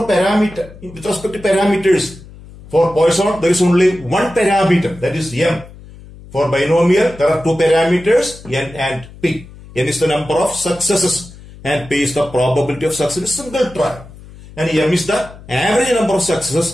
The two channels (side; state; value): left; noise; hum, 19 dB below the sound